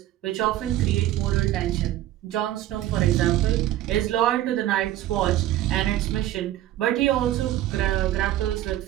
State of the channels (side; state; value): left; quieter; 13.7 dB